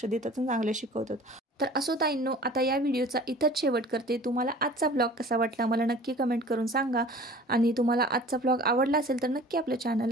देतात आणि चांगले शिकवतात. तर असो ताईंनो, आता या व्हिडिओचा इथंच शेवट करते. तुम्हाला आजचा ब्लॉग कसा वाटला मला नक्की कमेंट करून सांगा, आणि तुम्हाला आजचा ब्लॉग आवडला असेल तर नक्की आपल्या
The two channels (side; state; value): both; normal; correlation 0.45